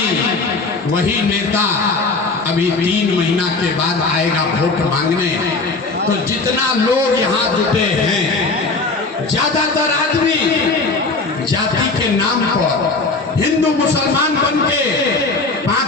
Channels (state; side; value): quieter; right; 3.6 dB